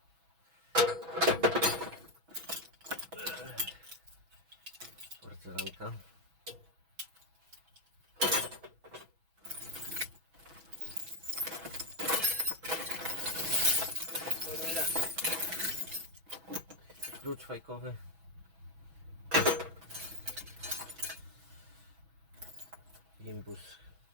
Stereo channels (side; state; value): left; late; 6.1 ms